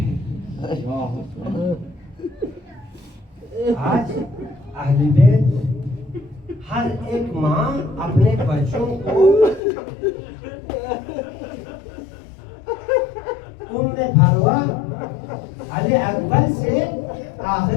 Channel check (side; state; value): right; drops out; at 9.6 s